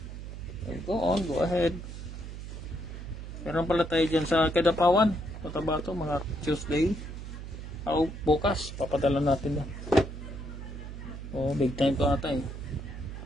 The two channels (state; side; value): noise; right; hum, 9 dB below the sound